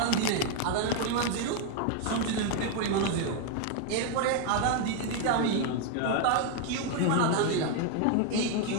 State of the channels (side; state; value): both; different; correlation 0.01